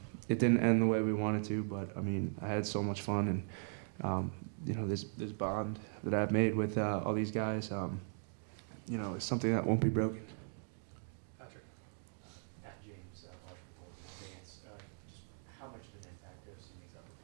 It didn't end the way we wanted to, but I mean, I had so much fun, and you know, this bond that I've made with all these guys, you know, it's something that won't be broken. Patrick? At James, Vance, just how much of an impact have some of these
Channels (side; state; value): left; silent; 52 dB below the other